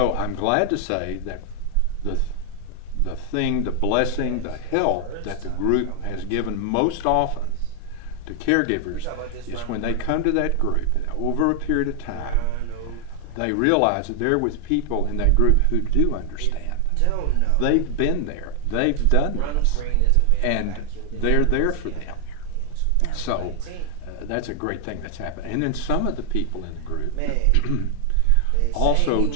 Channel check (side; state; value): both; different; correlation 0.00